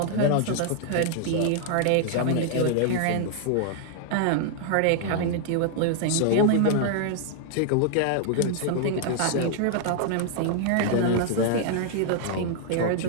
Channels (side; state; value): both; different; correlation 0.00